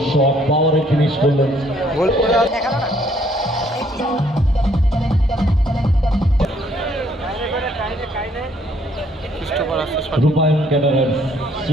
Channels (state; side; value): normal; both; correlation 0.65